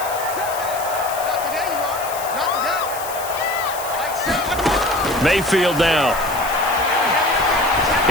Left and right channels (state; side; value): noise; left; hiss, 11 dB below the sound